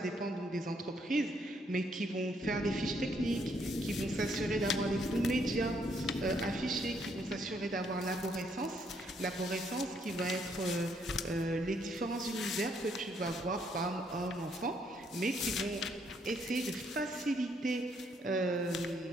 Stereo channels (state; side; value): normal; both; correlation 0.71